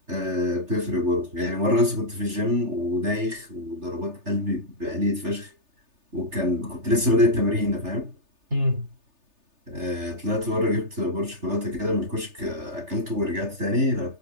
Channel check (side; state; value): left; late; 3.3 ms